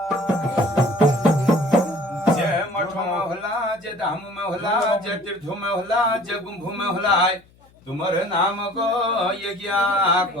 जय मठों में होला जय धामों में होला जय तीर्थों में होला जय गुंभों में होला तुम्हारे नाम को यज्ञा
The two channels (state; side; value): noise; left; hum, 30 dB below the sound